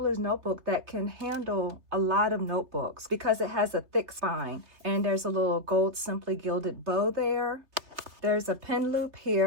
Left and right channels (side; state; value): left; late; 3.4 ms